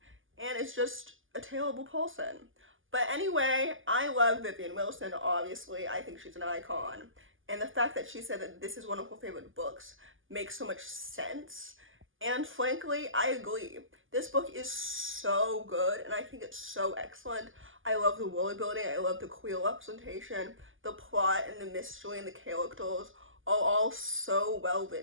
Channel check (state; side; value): late; left; 0.58 ms